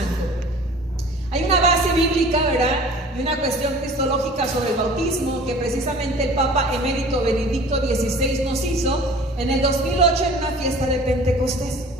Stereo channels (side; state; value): both; normal; correlation 0.45